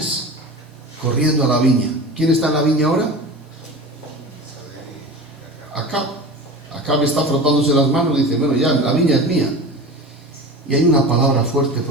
corriendo a la viña. ¿Quién está en la viña ahora? Acab. Acab está frotándose las manos y dice, bueno, ya, la viña es mía. Y hay una palabra fuerte,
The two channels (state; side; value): normal; both; correlation 0.32